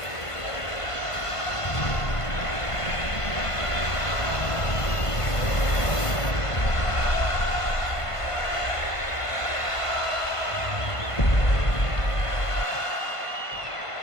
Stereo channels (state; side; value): late; right; 1.5 ms